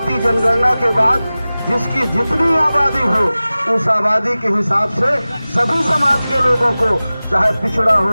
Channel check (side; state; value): both; inverted; correlation -0.97